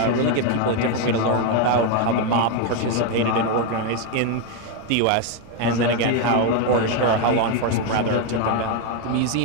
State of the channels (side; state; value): both; different; correlation 0.02